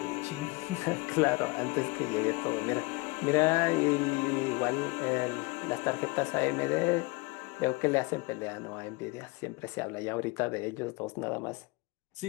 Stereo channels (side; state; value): right; quieter; 25.8 dB